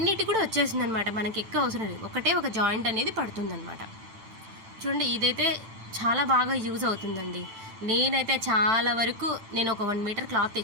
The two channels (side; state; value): left; late; 9.0 ms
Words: కూడా వచ్చేస్తుంది అనమాట. మనకి ఎక్కువ అవసరం లేదు, ఒకటే ఒక జాయింట్ అనేది పడుతుంది అనమాట. చూడండి, ఇదైతే చాలా బాగా యూజ్ అవుతుందండి. నేనైతే చాలా వరకు నేను ఒక 1 మీటర్ క్లాత్